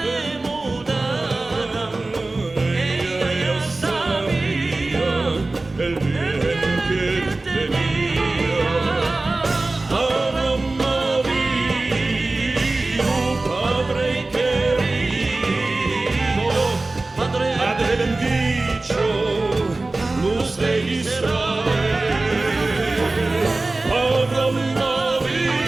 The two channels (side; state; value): left; quieter; 3.1 dB